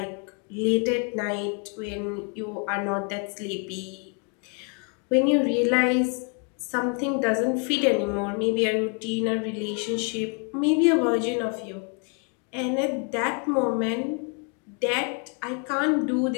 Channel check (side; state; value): right; quieter; 38.4 dB